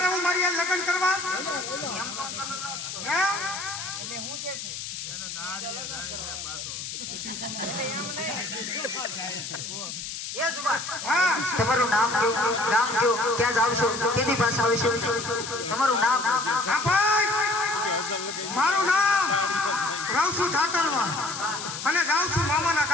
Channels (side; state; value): left; noise; hiss, 7 dB below the sound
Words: હું મારી યાર લગ્ન કરવા તમારું નામ કયો, ગામ કયો, ક્યાં જાવ છો, કેની પાસે આવશો, તમારું નામ? હા ભાઈ, મારું નામ રાવસુ ઠાકરવા અને જાઉં છું મામાના